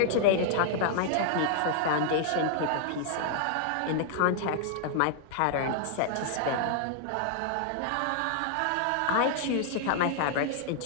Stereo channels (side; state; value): both; different; correlation 0.00